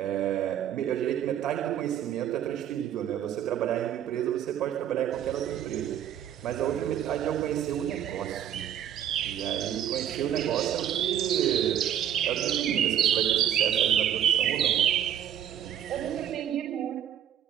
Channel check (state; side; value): quieter; left; 10.3 dB